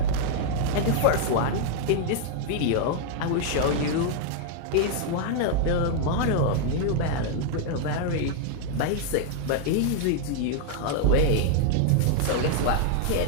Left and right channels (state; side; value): different; both; correlation 0.00